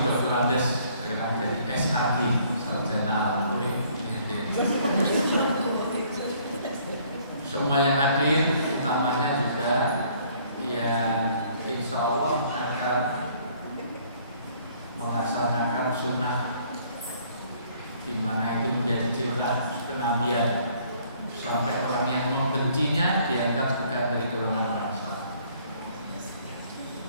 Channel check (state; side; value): inverted; both; correlation -0.61